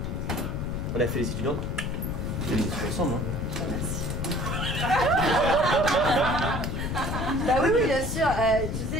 On a fait les études. Hein. On a fait les études ensemble. Hein. Bah oui, oui, bien sûr. Tu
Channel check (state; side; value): noise; left; rumble, 3 dB below the sound